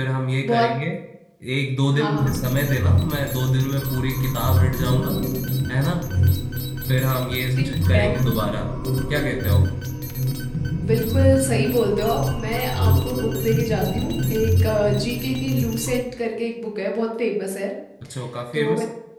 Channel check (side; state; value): both; identical; correlation 1.00